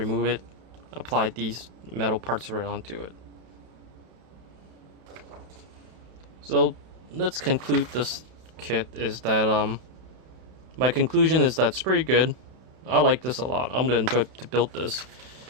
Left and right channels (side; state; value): left; late; 32 ms